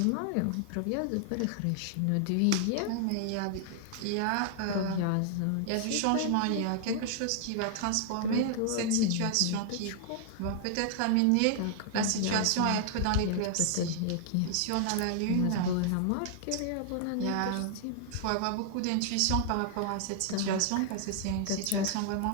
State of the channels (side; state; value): both; different; correlation 0.00